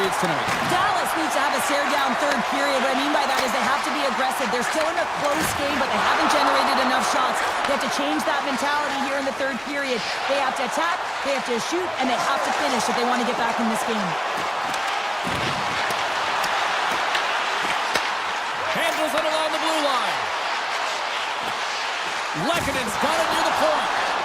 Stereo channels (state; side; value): identical; both; correlation 1.00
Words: tonight? Dallas needs to have a stare-down third period. What I mean by that is they have to be aggressive. They're still in a close game, but they haven't generated enough shots. They have to change that mentality here in the third period. They have to attack, they have to shoot, and they have to finish if they want to get back in this game. Handles it along the blue line. Lekkonen's got it near the point.